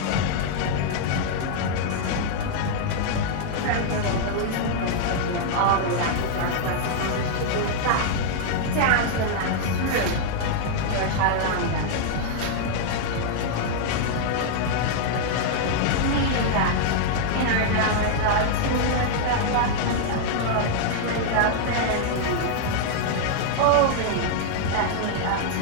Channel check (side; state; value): both; different; correlation -0.01